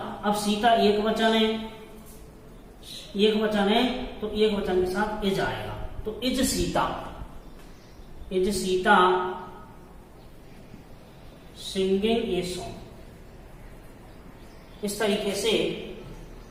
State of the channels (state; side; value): identical; both; correlation 1.00